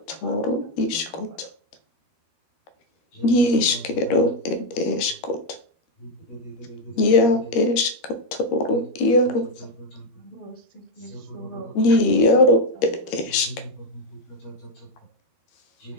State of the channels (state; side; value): late; right; 13 ms